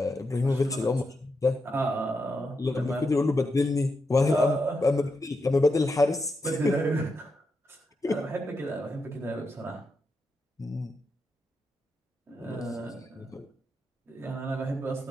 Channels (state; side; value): normal; both; correlation 0.85